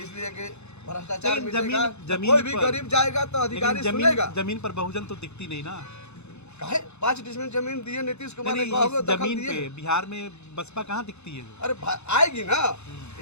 कि भ्रष्टाचार मिटेगा तो कोई भी गरीब जाएगा तो अधिकारी सुनेगा। जमीन पर बहुजन तो दिखती नहीं ना। काहे 5 डिसमिल जमीन दिए नीतीश कुमार ने, जमीन पे बिहार में बसपा कहाँ दिखती है? अरे आएगी ना,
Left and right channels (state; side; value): late; right; 0.81 ms